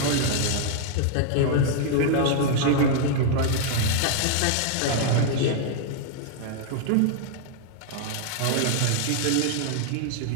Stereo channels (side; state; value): both; different; correlation -0.01